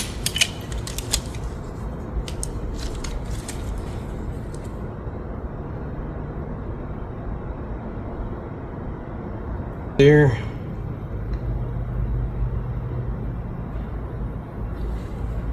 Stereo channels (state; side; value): identical; both; correlation 1.00